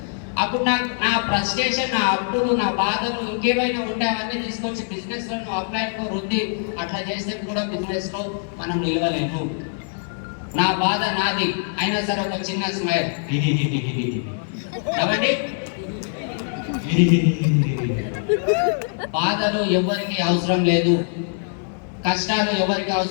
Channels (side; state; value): right; silent; digital silence